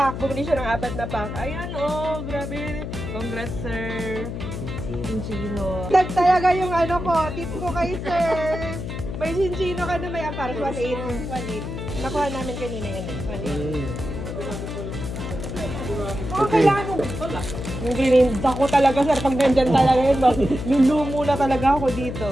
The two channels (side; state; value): left; noise; hum, 6 dB below the sound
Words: bumili siya ng 4 na pack. Ayan oh, grabe. Congrats sir. Chinchino. Dag talaga yung ano ko, tip ko kay sir. May chinchino ka na may amparas, 1.8. 1.8. Nakuha namin kanina yan eh, 1.8. Oh, kailangan mo. Yung gininda ko talaga sir, pag nandyan talaga yun, lulumo na talaga ako